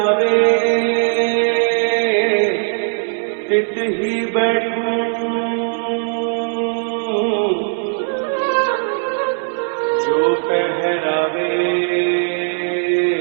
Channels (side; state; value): left; silent; 60 dB below the other